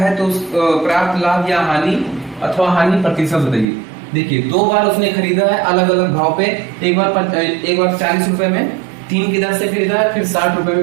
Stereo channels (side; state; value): left; drops out; at 3.7 s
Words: तो प्राप्त लाभ या हानि अथवा हानि प्रतिशत बताइए। देखिए 2 बार उसने खरीदा है अलग अलग भाव पे, एक बार 40 रुपए में 3 की दर से खरीदा है, फिर 60 रुपए